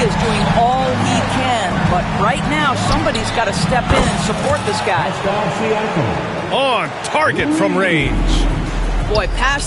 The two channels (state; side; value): identical; both; correlation 1.00